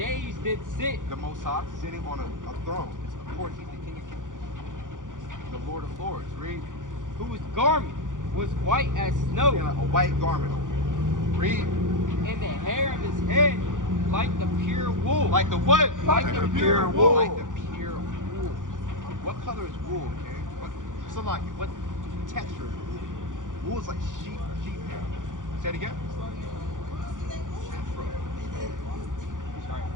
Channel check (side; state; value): left; late; 0.88 ms